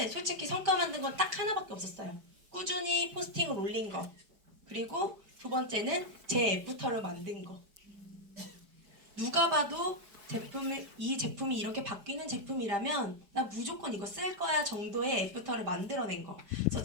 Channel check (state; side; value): late; left; 5.1 ms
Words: 솔직히 성과 만든 건 딱 하나밖에 없었어요. 꾸준히 포스팅을 올린 거. 그리고 두 번째는 제 애프터를 만든 거. 누가 봐도 이 제품이 이렇게 바뀌는 제품이라면 나 무조건 이거 쓸 거야 정도의 애프터를 만들어낸 거. 그래서